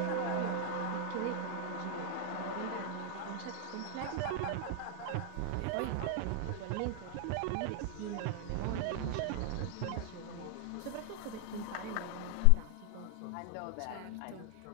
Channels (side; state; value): both; different; correlation 0.00